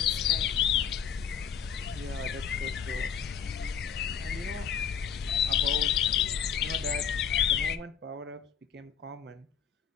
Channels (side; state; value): right; quieter; 7.9 dB